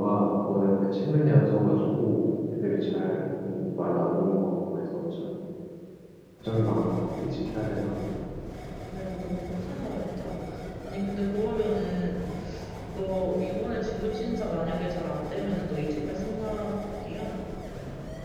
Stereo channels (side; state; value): both; identical; correlation 1.00